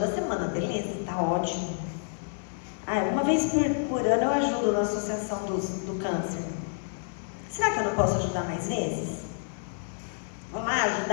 semana, beleza, tá ótimo. Uma vez por ano eu ajudo na associação do câncer. Será que eu não posso ajudar mais vezes? Vou lá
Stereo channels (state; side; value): silent; right; digital silence